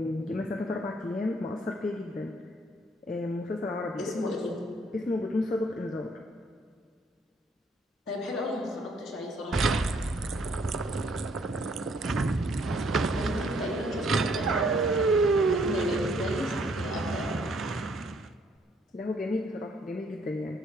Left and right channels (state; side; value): normal; both; correlation 0.66